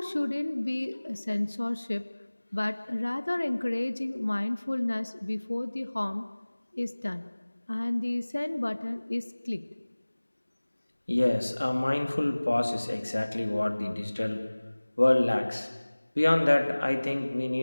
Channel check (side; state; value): both; inverted; correlation -1.00